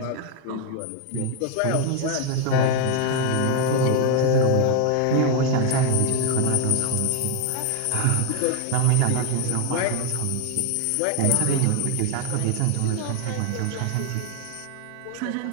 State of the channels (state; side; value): different; both; correlation 0.01